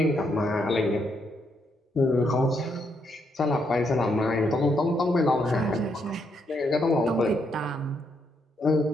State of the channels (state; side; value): normal; both; correlation 0.76